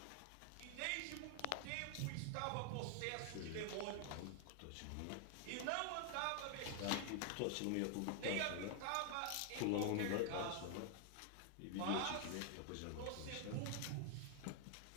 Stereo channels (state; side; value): different; both; correlation 0.00